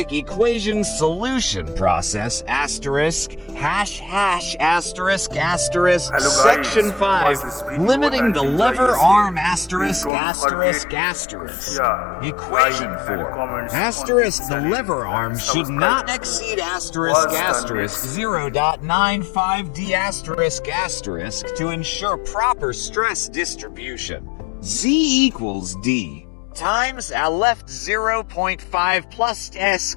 equation solution process asterisk hash hash asterisk asterisk. Section 5. Limiting the lever arm asterisk asterisk asterisk. Equation 4. Asterisk the lever arm should not exceed asterisk asterisk 0.95 D asterisk asterisk to ensure proper stress distribution. Z equals D times a left 0.5 plus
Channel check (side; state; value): right; drops out; at 10.1 s